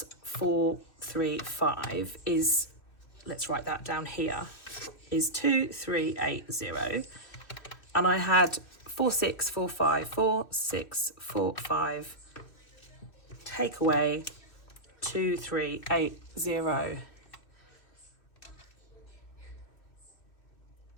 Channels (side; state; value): right; late; 2.6 ms